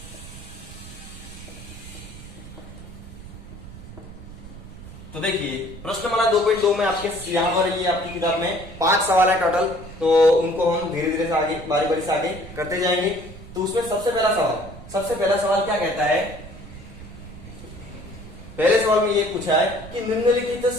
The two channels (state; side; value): noise; right; rumble, 15 dB below the sound